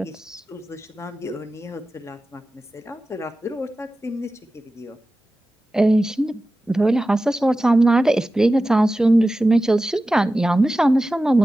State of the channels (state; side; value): normal; both; correlation 0.95